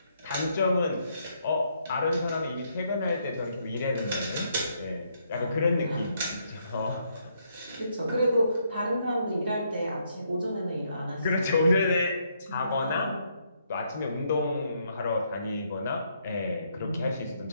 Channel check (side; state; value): both; inverted; correlation -0.74